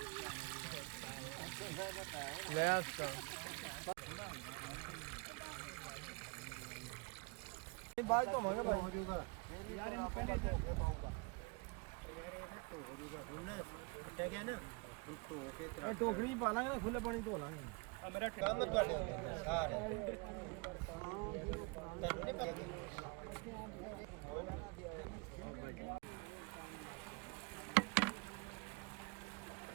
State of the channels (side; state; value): left; quieter; 30.4 dB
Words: बात तो मांगा भाई यार इन्हें पहले धो पाऊंगा यार ये ना तो हो जाएगा सुनना क्या क्या ना तो के तरह टोकरी पा लांगे ना खुले पानी धो लांगे मेरा काम मत बाटे सारे तब नहीं पाएगी